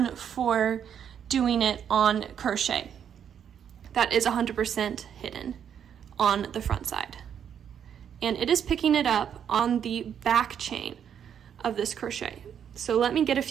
for doing it on crochet that is 100% hidden on the front side. And it is picking it up on the back chain of this crochet. So let me get a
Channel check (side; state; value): left; quieter; 8.5 dB